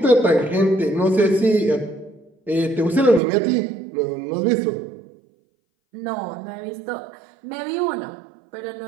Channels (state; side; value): drops out; left; at 3.2 s